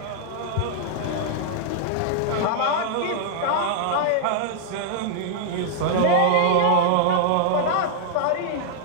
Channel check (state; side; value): different; both; correlation -0.01